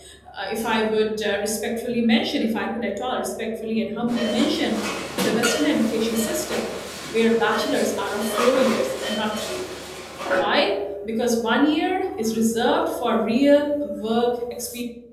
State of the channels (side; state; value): both; identical; correlation 1.00